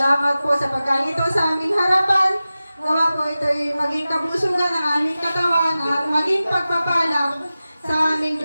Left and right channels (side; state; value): both; inverted; correlation -0.95